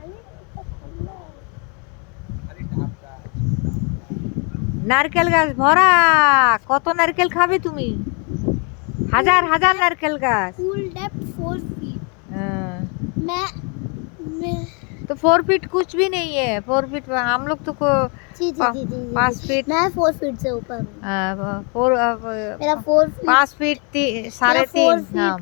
নারকেল গাছ ভরা, কত নারকেল খাবে তুমি? हजार हजार नारकेल गाछ। Full depth 4 feet। मैं तो 4 फीट कुछ भी नहीं है। 4 फीट हम लोग तो जी 5 फीट, मैं 4 फीट से ऊपर हूँ। मेरा 4 फीट 5 फीट 3.5 फीट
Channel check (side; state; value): right; quieter; 36.1 dB